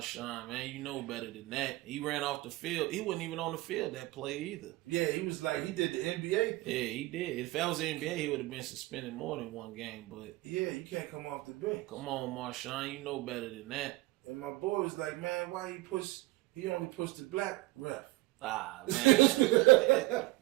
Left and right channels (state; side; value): quieter; left; 19.6 dB